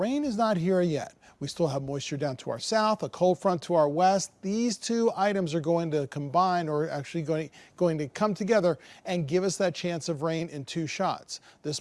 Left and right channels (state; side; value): identical; both; correlation 1.00